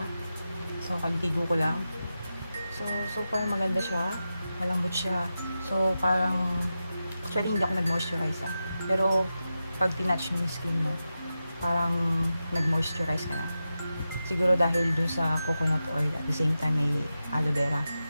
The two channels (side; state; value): both; inverted; correlation -0.91